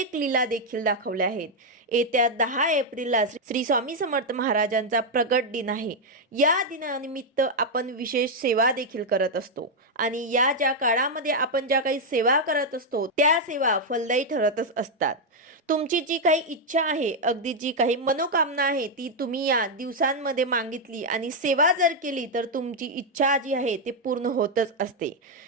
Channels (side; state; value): both; normal; correlation 0.00